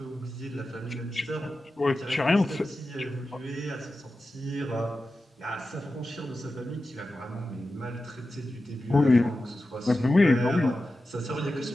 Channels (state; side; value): normal; both; correlation 0.93